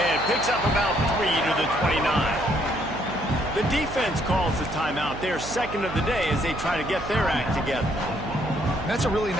Picks up about 3 to the 29. The defense calls the timeout. They're 2nd of the day as they try to get their act together. That's a really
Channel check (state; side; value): noise; right; hum, 11 dB below the sound